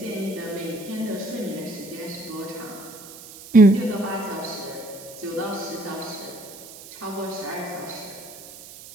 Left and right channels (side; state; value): right; noise; hiss, 16 dB below the sound